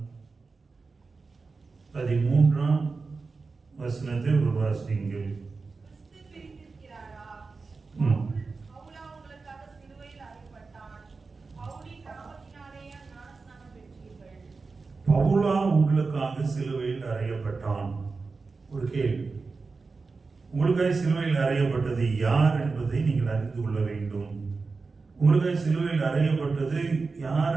13ஆம் வசனத்தை ஒரு வாசியுங்கள். பவுலா உங்களுக்காக சிலுவையில் அறையப்பட்டான். ஒரு கேள்வி, உங்களுக்காக சிலுவையில் அறையப்பட்டது யார் என்பதை நீங்கள் அறிந்து கொள்ள வேண்டும். உங்களுக்காக சிலுவையில் அறையப்பட்டது யார்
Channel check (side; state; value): left; quieter; 4.2 dB